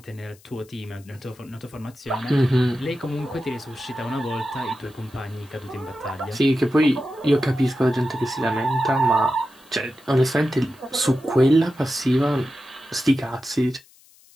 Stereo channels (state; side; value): noise; left; hiss, 27 dB below the sound